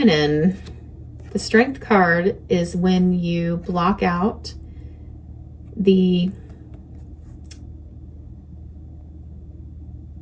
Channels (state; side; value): identical; both; correlation 1.00